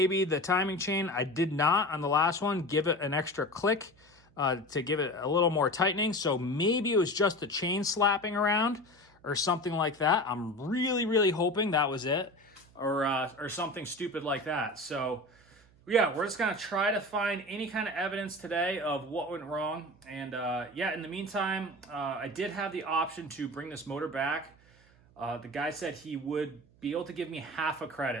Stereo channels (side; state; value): right; noise; hum, 29 dB below the sound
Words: the timing chain, I did not on the last one, give it an extra click to give it a little more tightening. So maybe it was just the chain slapping around or something like that. I'm really hoping that was it, or something stupid like that. So yeah, we're just gonna try to find any kind of evidence today of what went wrong. And yeah, in the meantime, I did have the option to bring this motor back. The guy said he would be able to give me half a